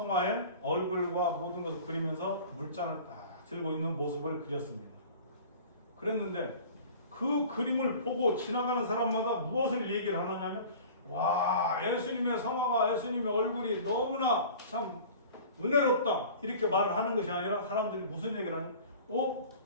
얼굴과 모든 것을 그리면서 물잔을 딱 들고 있는 모습을 그렸습니다. 그랬는데 그 그림을 보고 지나가는 사람마다 무엇을 얘기를 하느냐면 와, 예수님의 성화가, 예수님의 얼굴이 너무나 참 은혜롭다 이렇게 말을 하는 것이 아니라 사람들이 무슨 얘기를 하냐면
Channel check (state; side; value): inverted; both; correlation -0.43